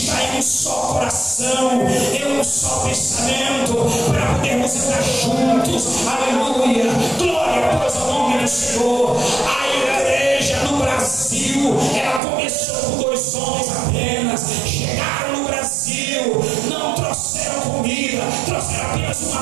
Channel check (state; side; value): drops out; left; at 12.2 s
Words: em um só coração, em um só pensamento, para podermos andar juntos. Aleluia. Glória pois ao nome do Senhor. A igreja no Brasil, ela começou com 2 homens apenas. Chegaram no Brasil, não trouxeram comida, trouxeram apenas uma